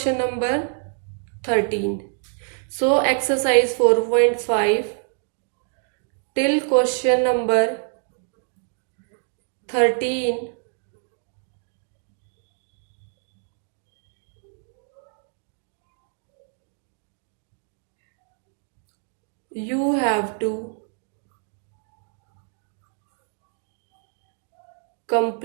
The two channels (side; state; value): left; silent; 56 dB below the other